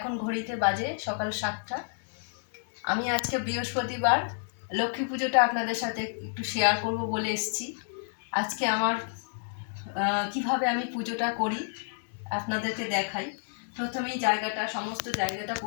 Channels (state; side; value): silent; right; digital silence